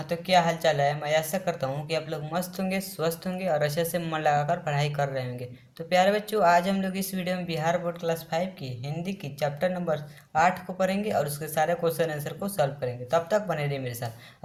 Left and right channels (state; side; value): identical; both; correlation 1.00